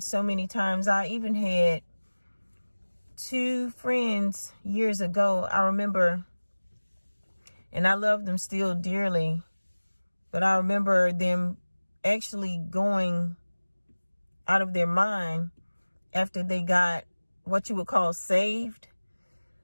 many times. I even had 2 friends years ago. I remember, and I love them still dearly, but I remember them actually going out of their mind after they got what you would call saved.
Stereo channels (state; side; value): inverted; both; correlation -1.00